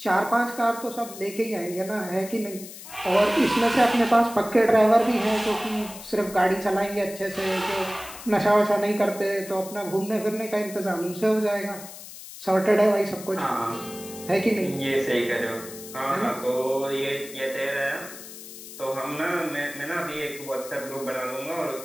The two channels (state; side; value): noise; left; hiss, 14 dB below the sound